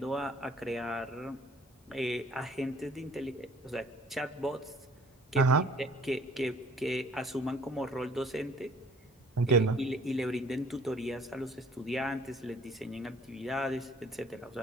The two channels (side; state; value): both; normal; correlation 0.55